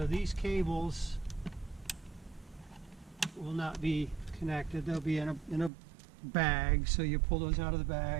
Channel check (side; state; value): left; drops out; at 5.7 s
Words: these cables will not be connected. They'll be in a bag, so you pull those out of the